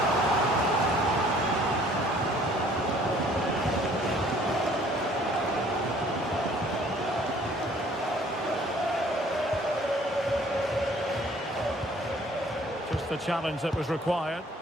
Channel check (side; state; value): both; normal; correlation 0.57